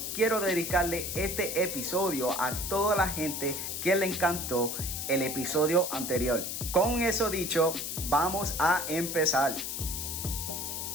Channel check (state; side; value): noise; left; hiss, 4 dB below the sound